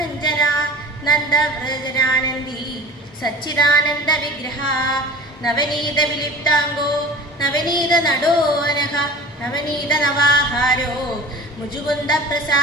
നന്ദവ്രജനാനന്ദി സച്ചിദാനന്ദ വിഗ്രഹ. നവനീത വിലിപ്താംഗോ നവനീത നടോനഘ നവനീത നവാഹാരോ മുജുകുന്ദ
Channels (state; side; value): normal; both; correlation 0.39